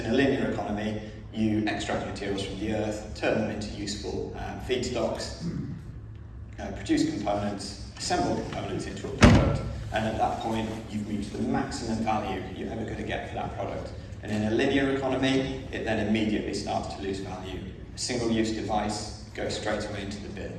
a linear economy, you extract materials from the earth, turn them into useful feedstocks, produce components, assemble components into a product, and at that point, you've reached the maximum value you're ever going to get for that product. And in a linear economy, it then immediately starts to lose value. A single-use device goes straight away into the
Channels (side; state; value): both; identical; correlation 1.00